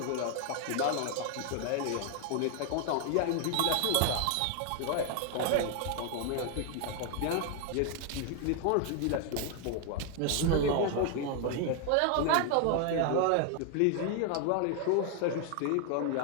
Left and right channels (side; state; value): both; different; correlation 0.00